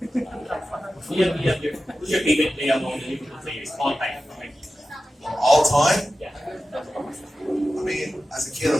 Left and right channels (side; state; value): both; normal; correlation 0.93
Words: Who's your favorite player among the Liverpool players all time? All time? Yeah. I mean, as a kid, I